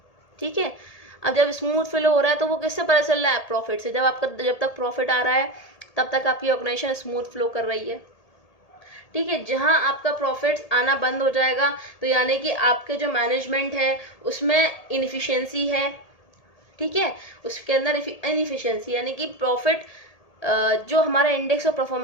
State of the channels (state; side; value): late; right; 1.8 ms